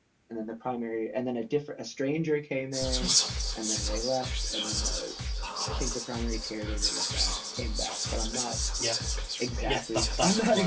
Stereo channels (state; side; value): identical; both; correlation 1.00